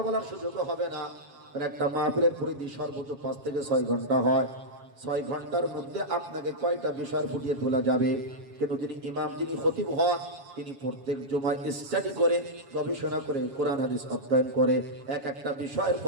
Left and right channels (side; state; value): left; late; 7.3 ms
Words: বলার সুযোগও হবে না। আর একটা মাহফিলের পরিধি সর্বোচ্চ 5 থেকে 6 ঘন্টা হয়। 6 ঘন্টার মধ্যে আপনাকে কয়টা বিষয় ফুটিয়ে তোলা যাবে? কিন্তু যিনি ইমাম, যিনি খতিব হন, তিনি প্রত্যেক জুমায় স্টাডি করে, গবেষণা করে, কোরআন হাদিস অধ্যয়ন করে, এক একটা বিষয়ের